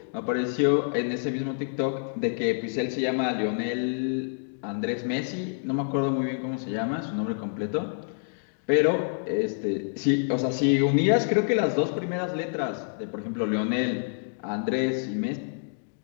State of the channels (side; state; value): right; silent; digital silence